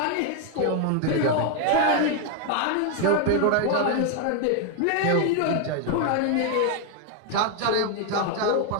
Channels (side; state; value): both; different; correlation 0.01